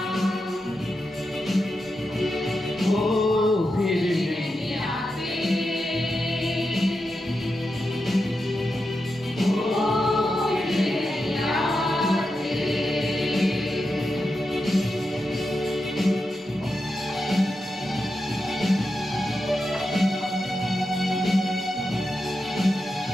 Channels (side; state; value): both; normal; correlation 0.88